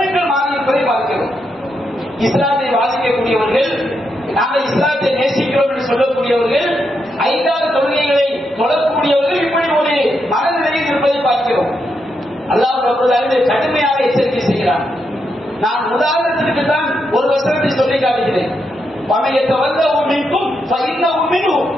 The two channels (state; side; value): normal; both; correlation 0.82